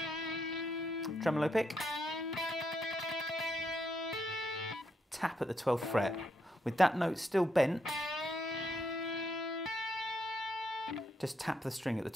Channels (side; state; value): both; normal; correlation 0.78